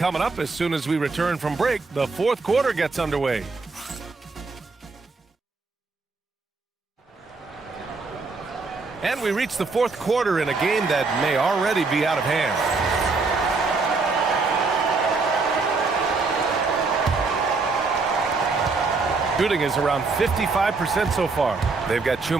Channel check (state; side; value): quieter; left; 4.1 dB